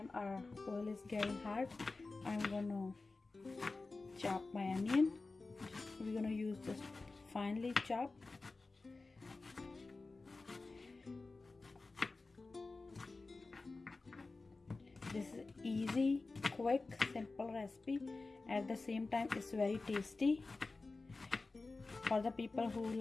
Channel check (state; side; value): quieter; right; 3.6 dB